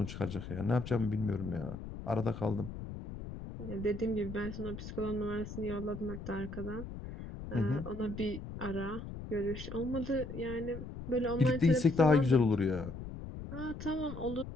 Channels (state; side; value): noise; left; rumble, 9 dB below the sound